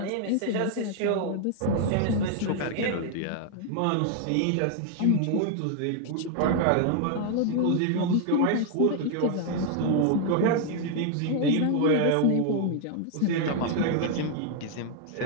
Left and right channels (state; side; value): different; both; correlation 0.00